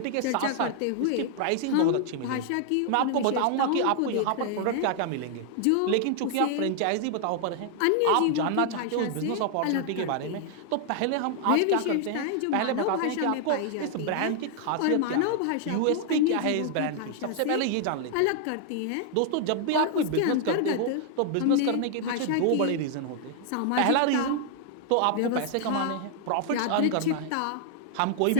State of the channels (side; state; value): both; different; correlation 0.00